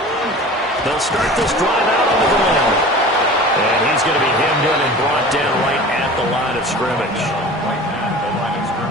They'll start this drive out on the ground. And he's going to be hemmed in and brought down right at the line of scrimmage.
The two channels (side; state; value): both; normal; correlation 0.39